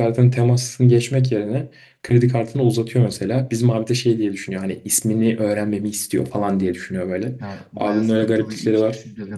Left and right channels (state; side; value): identical; both; correlation 1.00